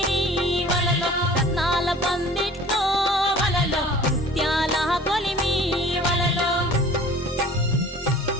వలలో రత్నాల పందిట్లో వలలో ముత్యాల కొలిమి వలలో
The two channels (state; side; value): normal; both; correlation 0.47